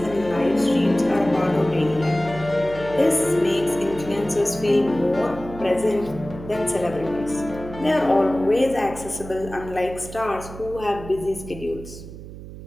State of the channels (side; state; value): right; noise; hum, 13 dB below the sound